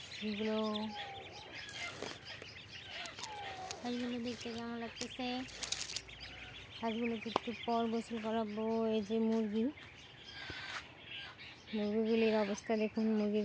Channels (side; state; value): both; identical; correlation 1.00